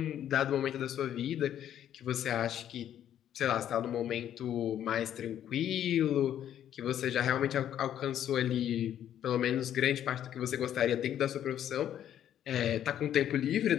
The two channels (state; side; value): quieter; right; 10.6 dB